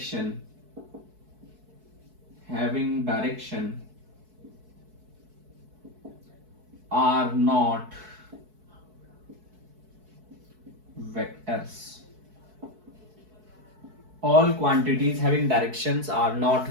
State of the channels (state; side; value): late; left; 4.6 ms